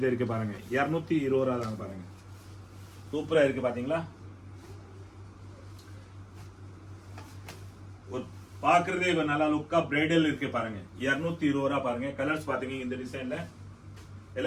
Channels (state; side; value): identical; both; correlation 1.00